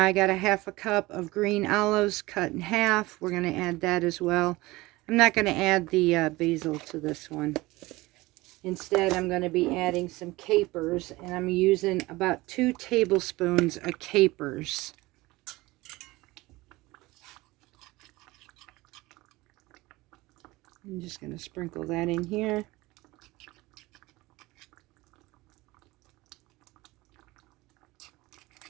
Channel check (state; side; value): quieter; left; 20.5 dB